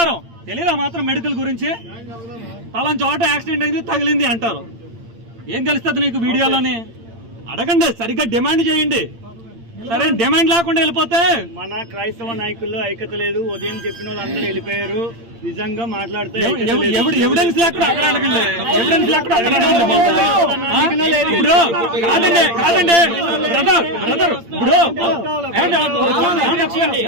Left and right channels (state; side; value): late; left; 8.8 ms